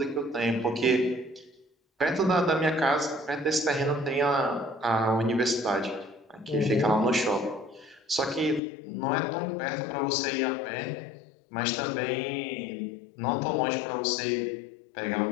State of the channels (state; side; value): drops out; right; at 8.6 s